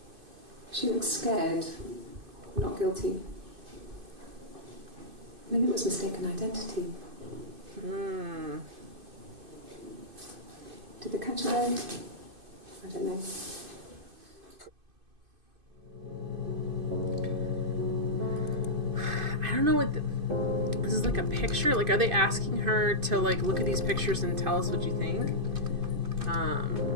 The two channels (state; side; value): late; left; 2.5 ms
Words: She looks scared, not guilty. Maybe it was mistaken identity. Did they catch her there? I don't know. I don't know what this is, like a picture? Like, are they asking her to, like, look at these pictures and tell us what you think? I